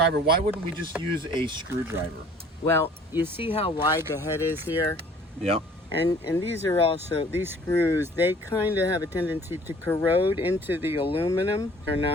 why wouldn't we just use a screwdriver? Well, you see how wide the head is here? Yep. And these are also, these screws, they kind of have a tendency to corrode into the aluminum.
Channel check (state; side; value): normal; both; correlation 0.53